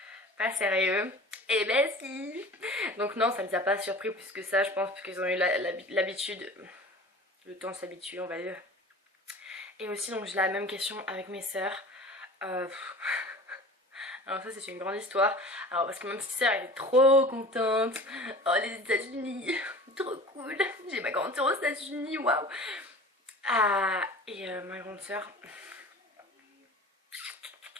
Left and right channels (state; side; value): normal; both; correlation 0.40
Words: pas sérieux. Et ben si. Donc non, ça les a pas surpris plus que ça, je pense, parce qu'ils ont eu l'habitude, le temps de s'habituer on va dire. Et aussi donc j'ai la même question avec mes sœurs. Alors ça c'est une grande histoire. Alors parce que ma petite sœur elle est trop contente. Oh les États-Unis, trop cool. J'ai ma grande sœur aux États-Unis, waouh. Et ma grande sœur,